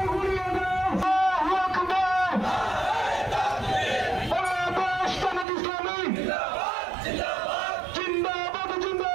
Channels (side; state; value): left; drops out; at 5.5 s